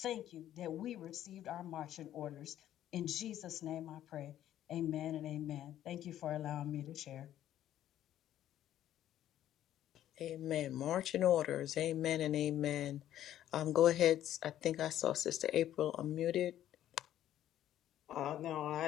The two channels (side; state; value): right; quieter; 12.0 dB